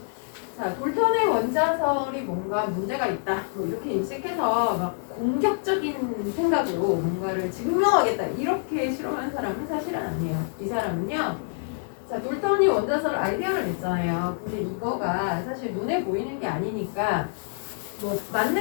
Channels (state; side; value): silent; right; 61 dB below the other